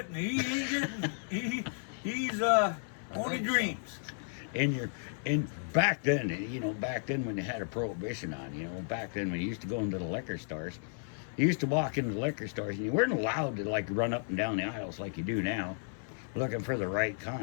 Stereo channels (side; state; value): right; silent; 56 dB below the other